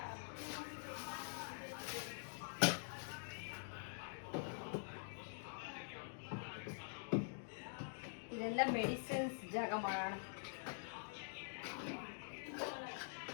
ಇದೆಲ್ಲ ಮೆಡಿಸಿನ್ಸ್ ಜಾಗ ಮಾಡೋಣ.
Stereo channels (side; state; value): right; silent; digital silence